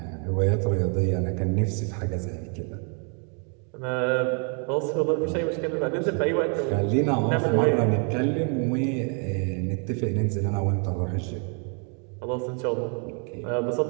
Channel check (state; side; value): quieter; left; 40.0 dB